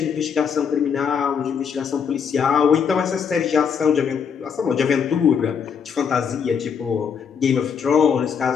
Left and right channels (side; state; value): right; quieter; 6.9 dB